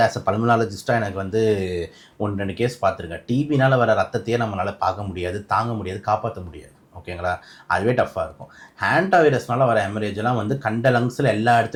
ஆஸ் அ பல்மனாலஜிஸ்ட்டாக எனக்கு வந்து 1-2 கேஸ் பார்த்துருக்கேன். டிபினால் வர ரத்தத்தையே நம்மளால் பார்க்க முடியாது, தாங்க முடியாது, காப்பாற்ற முடியாது. ஓகேங்களா, அதுவே டஃப்பாக இருக்கும். ஹேண்டா வைரஸ்னால வர ஹெமரேஜெலாம் வந்து கண்ட லங்ஸில் எல்லா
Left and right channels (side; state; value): both; identical; correlation 1.00